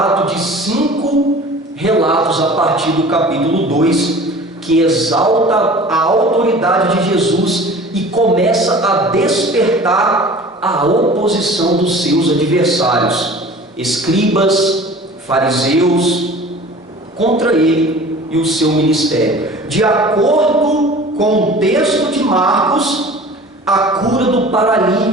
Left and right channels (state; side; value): normal; both; correlation 0.43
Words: de 5 relatos a partir do capítulo 2, que exalta a autoridade de Jesus e começa a despertar a oposição dos seus adversários, escribas, fariseus, contra ele e o seu ministério. De acordo com o texto de Marcos, a cura do